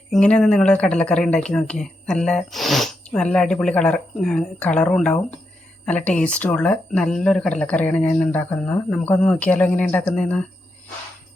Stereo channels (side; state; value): both; normal; correlation 0.84